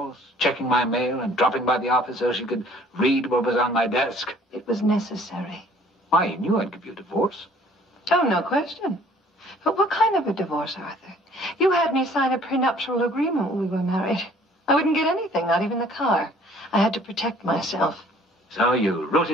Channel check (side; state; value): both; normal; correlation 0.56